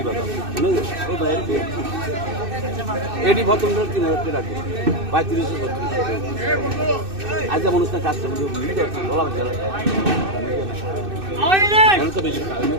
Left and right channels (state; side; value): late; left; 2.6 ms